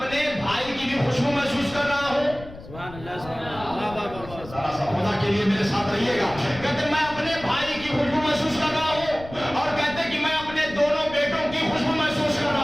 بھائی کی بھی خوشبو محسوس کر رہا ہوں. سبحان اللہ, سبحان اللہ. ذرا سا خدا کے لیے میرے ساتھ رہیے گا. کہتے میں اپنے بھائی کی خوشبو محسوس کر رہا ہوں, اور کہتے کہ میں اپنے دونوں بیٹوں کی خوشبو محسوس کر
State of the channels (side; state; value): left; noise; rumble, 16 dB below the sound